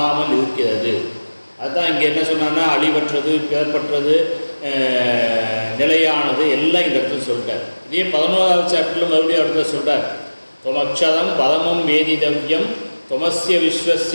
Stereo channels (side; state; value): both; inverted; correlation -1.00